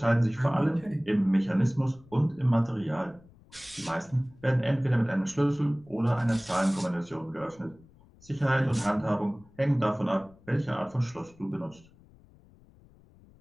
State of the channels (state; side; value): noise; left; rumble, 26 dB below the sound